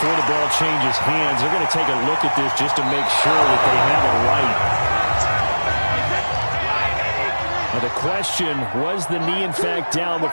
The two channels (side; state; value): both; inverted; correlation -1.00